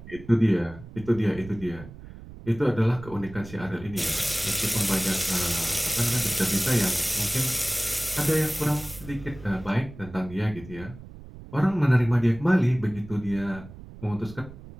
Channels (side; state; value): right; noise; rumble, 16 dB below the sound